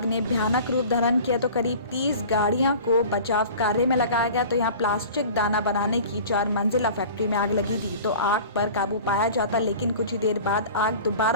ने भयानक रूप धारण किया तो करीब 30 गाड़ियों को बचाव कार्य में लगाया गया। तो यहाँ प्लास्टिक दाना बनाने की 4 मंजिला फैक्ट्री में आग लगी थी तो आग पर काबू पाया जाता, लेकिन कुछ ही देर बाद आग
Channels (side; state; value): both; inverted; correlation -0.41